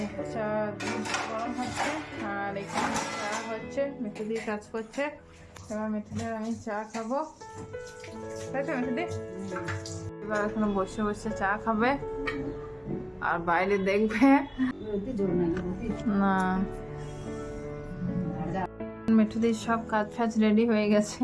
চা গরম হচ্ছে, আর এখানে চা হচ্ছে, মিঠুদি কাজ করছে। এবার মিঠুদির আমি চা খাবো, তাই তো মিঠুদি? এবার এখানে বসে বসে চা খাবে আর বাইরে দেখবে না। মিঠুদির সব কাজ ফাজ রেডি হয়ে গেছে,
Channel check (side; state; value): both; identical; correlation 1.00